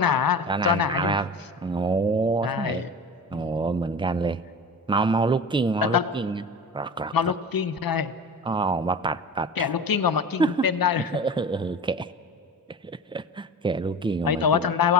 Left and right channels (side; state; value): both; normal; correlation 0.32